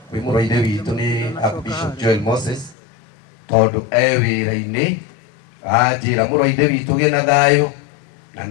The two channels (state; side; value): drops out; right; at 2.8 s